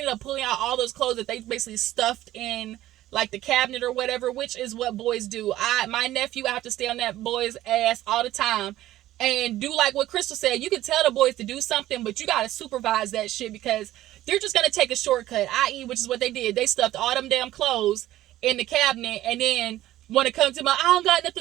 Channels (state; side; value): quieter; left; 14.6 dB